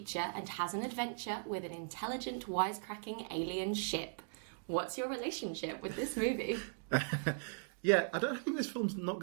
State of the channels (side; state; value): left; silent; digital silence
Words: and has an adventure with an intelligent, wisecracking alien ship. What's your relationship with this movie? Yeah, I don't think this film's not